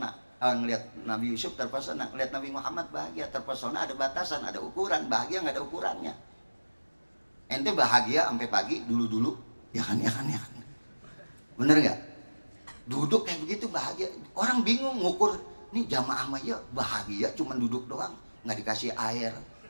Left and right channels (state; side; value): inverted; both; correlation -1.00